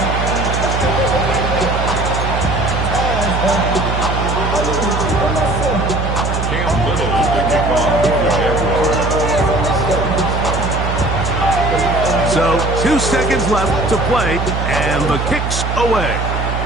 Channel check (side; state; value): right; noise; hum, 2 dB below the sound